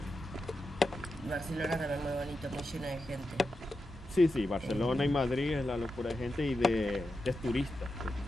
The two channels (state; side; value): normal; both; correlation 0.89